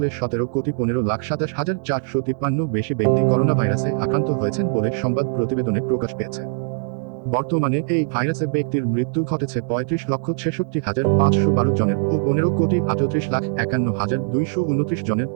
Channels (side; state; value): left; silent; digital silence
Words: 17,15,27,453 বেশি ব্যক্তি করোনা ভাইরাসে আক্রান্ত হয়েছেন বলে সংবাদ প্রতিবেদনে প্রকাশ পেয়েছে। বর্তমানে এই ভাইরাসে ব্যক্তির মৃত্যু ঘটেছে 35,66,512 জনের ও 15,38,51,229 জনের